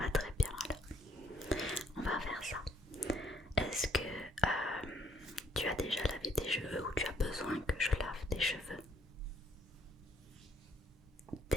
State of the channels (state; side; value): normal; both; correlation 0.64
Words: très bien alors. On va faire ça. Est-ce que tu as déjà lavé tes cheveux ou tu as besoin que je lave tes cheveux?